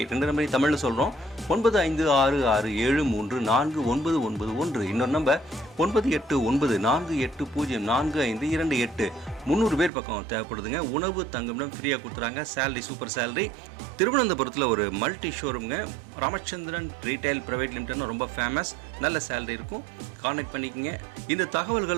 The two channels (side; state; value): left; drops out; at 9.9 s